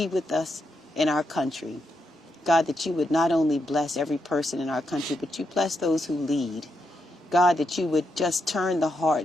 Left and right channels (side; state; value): both; normal; correlation 0.82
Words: with us in our country. God, that you would not only bless every person in our country, but you bless those who lead. God, that you would just turn the